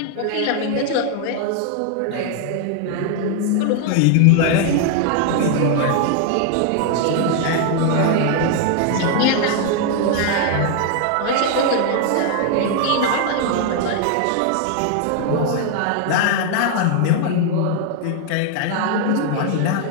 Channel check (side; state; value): both; different; correlation 0.00